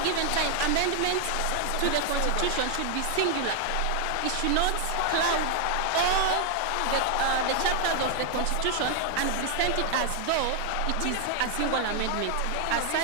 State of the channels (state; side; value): different; both; correlation 0.00